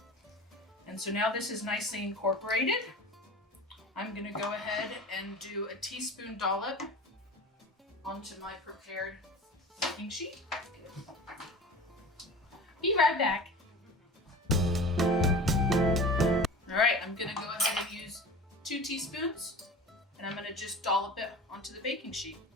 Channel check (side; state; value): both; normal; correlation 0.35